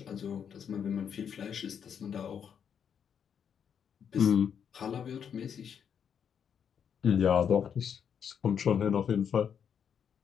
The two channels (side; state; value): right; quieter; 7.8 dB